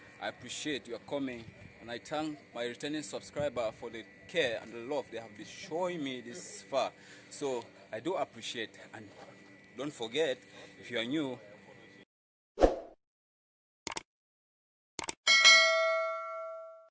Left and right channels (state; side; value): identical; both; correlation 1.00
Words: I appreciate your coming, and I thank my returning subscriber for the care and the love they have been showing me this far. So I do appreciate, and don't forget, if you are new,